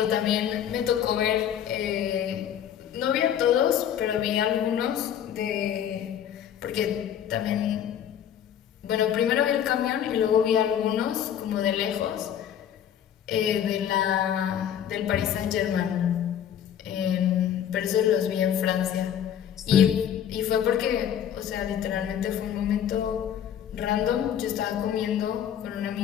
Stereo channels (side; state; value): right; quieter; 9.6 dB